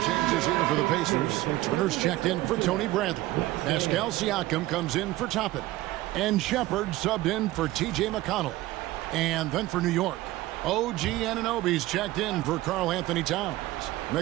changes here for the Pacers. Turner's checked in for Tony Bradley. Pascal Siakam comes in for Toppin. And Shepard subbed in for T.J. McConnell. And then for New York, OG Anunoby's checked in for Karl Anthony Towns.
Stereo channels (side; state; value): left; quieter; 17.3 dB